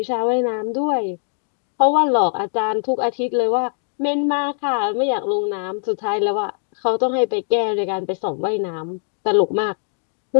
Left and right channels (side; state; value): right; silent; digital silence